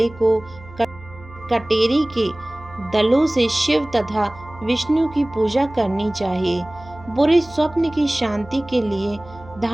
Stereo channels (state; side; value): noise; right; hum, 20 dB below the sound